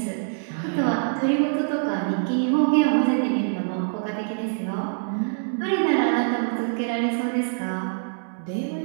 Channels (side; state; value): left; silent; 62 dB below the other